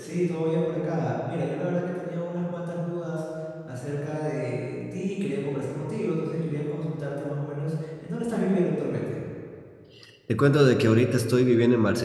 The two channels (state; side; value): identical; both; correlation 1.00